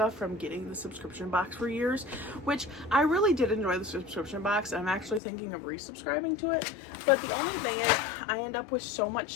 from getting the subscription box for years, which I really did enjoy the subscription box. I'm actually thinking of resubscribing to it. But the only thing is I end up with so much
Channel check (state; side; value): drops out; right; at 5.2 s